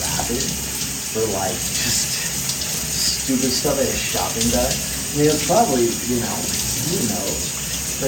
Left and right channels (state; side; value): identical; both; correlation 1.00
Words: grab it for, like, just stupid stuff at a shopping bag. I mean, it's probably, who knows.